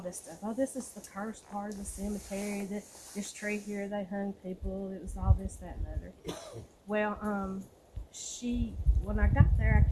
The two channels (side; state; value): both; identical; correlation 1.00